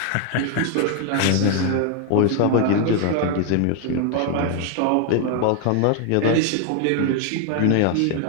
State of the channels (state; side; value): different; both; correlation 0.00